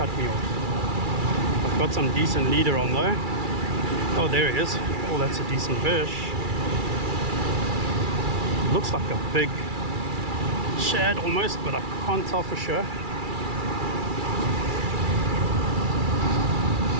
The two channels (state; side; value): late; left; 2.3 ms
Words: me off. I've got some decent leader on though. Oh, there he is. Oh, that's a decent fish. Looks like a big shad almost, but I can't tell for sure.